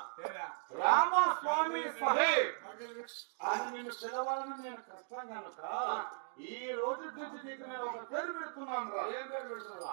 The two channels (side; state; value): left; silent; digital silence